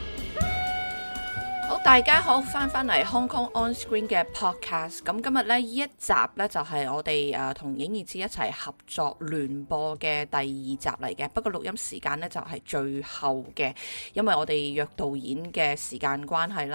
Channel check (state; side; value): inverted; both; correlation -1.00